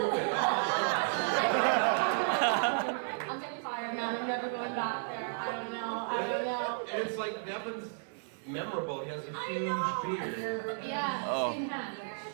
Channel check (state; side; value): silent; left; 56 dB below the other